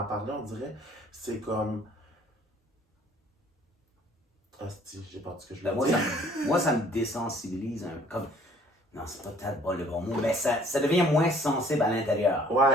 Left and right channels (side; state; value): both; normal; correlation 0.57